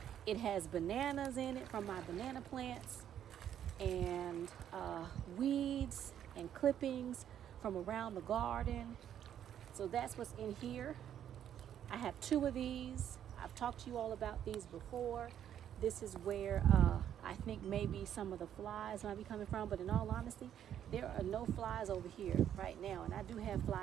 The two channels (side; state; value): left; quieter; 10.0 dB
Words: it has bananas in it from my banana plants, and weeds and clippings from around the garden. So that's what's in here. I have 2 of these. I've talked to you all about these before. This is where I think maybe some of the flies might be coming from, but in all honesty, there are no flies over here right now, and I do have